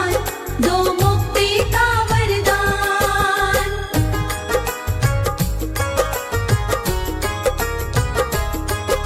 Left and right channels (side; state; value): both; identical; correlation 1.00